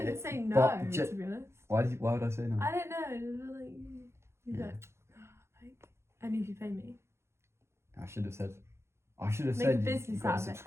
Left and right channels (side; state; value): left; late; 0.13 ms